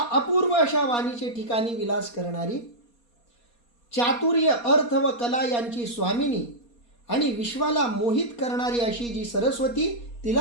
अपूर्व अशा वाणीचे ठिकाणी विलास करणारी, चातुर्य अर्थ व कला यांची स्वामिनी आणि विश्वाला मोहित करणारी अशी जी सरस्वती,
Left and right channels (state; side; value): late; right; 4.2 ms